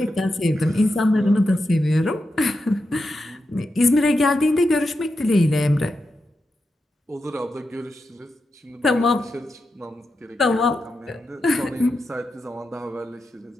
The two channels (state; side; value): normal; both; correlation 0.88